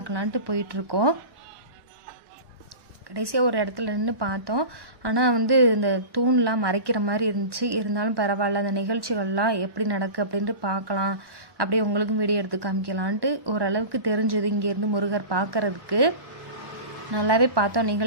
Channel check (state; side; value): late; left; 1.1 ms